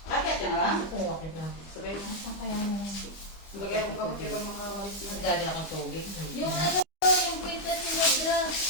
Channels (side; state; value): right; late; 25 ms